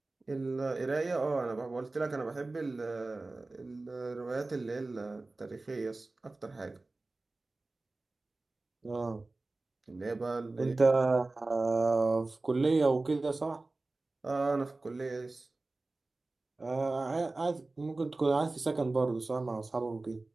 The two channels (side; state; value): left; quieter; 3.2 dB